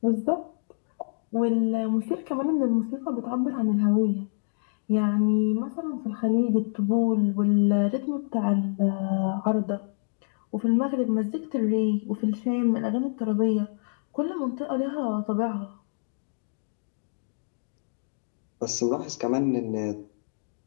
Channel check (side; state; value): right; silent; digital silence